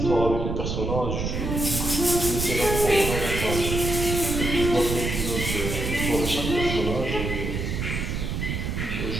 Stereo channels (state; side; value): noise; right; rumble, 2 dB below the sound